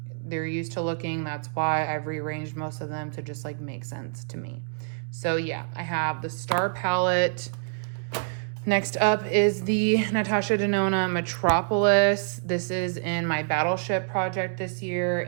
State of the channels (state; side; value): silent; left; 60 dB below the other